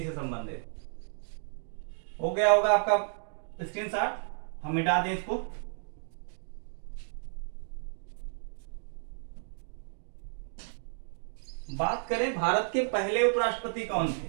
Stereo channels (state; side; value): silent; left; digital silence